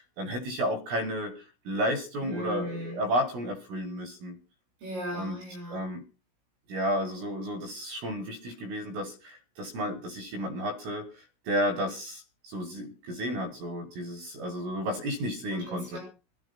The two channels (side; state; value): left; late; 16 ms